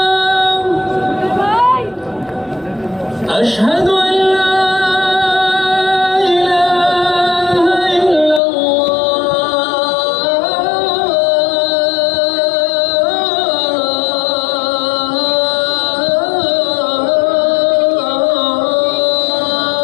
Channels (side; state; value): right; drops out; at 8.4 s